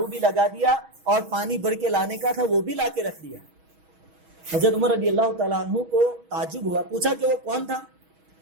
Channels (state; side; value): late; left; 6.3 ms